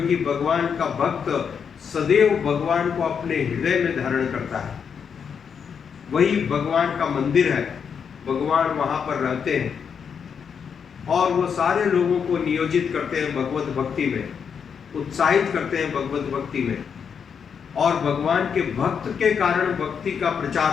भगवान का भक्त सदैव भगवान को अपने हृदय में धारण करता है। वही भगवान का मंदिर है, भगवान वहां पर रहते हैं। और वो सारे लोगों को नियोजित करते हैं भगवत भक्ति में, उत्साहित करते हैं भगवत भक्ति में, और भगवान के भक्त के कारण भक्ति का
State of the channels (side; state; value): right; quieter; 6.9 dB